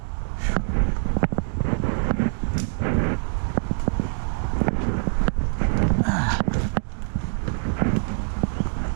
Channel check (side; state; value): left; silent; digital silence